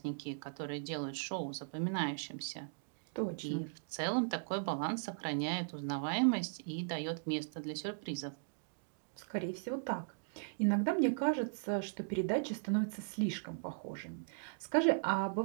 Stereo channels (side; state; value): left; silent; digital silence